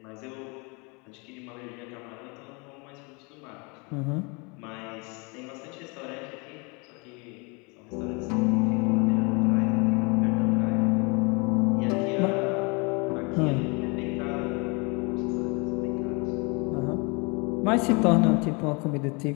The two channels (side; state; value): right; quieter; 30.5 dB